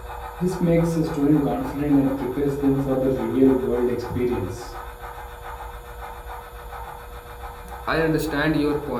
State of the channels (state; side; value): identical; both; correlation 1.00